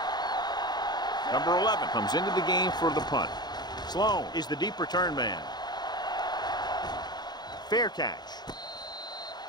Number 11 comes into the game for the punt. Sloan is the deep return man. Fair catch.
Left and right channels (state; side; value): late; right; 0.20 ms